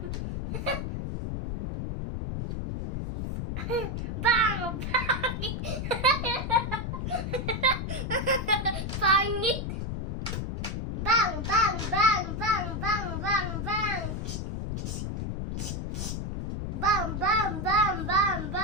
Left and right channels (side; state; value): left; noise; rumble, 3 dB below the sound